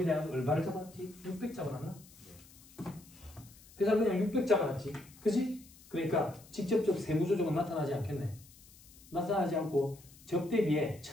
얼마를 잡았지? 600 잡아놨나? 회사는 그냥 600 잡아놨지. 그지? 그러니까 직접적 세무조정은 나타나지 않겠네. 나타나지 않고 접대비에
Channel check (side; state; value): left; noise; hiss, 23 dB below the sound